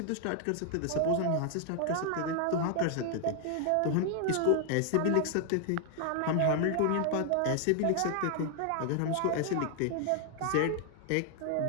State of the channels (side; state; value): both; different; correlation 0.00